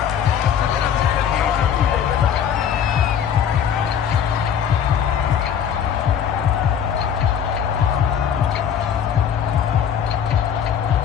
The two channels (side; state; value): right; quieter; 8.3 dB